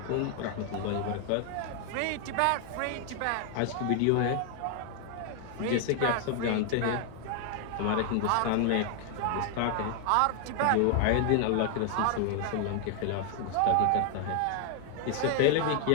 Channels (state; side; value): different; both; correlation 0.00